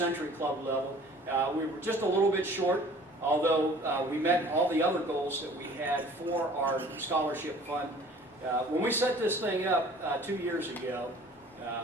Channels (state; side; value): normal; both; correlation 0.50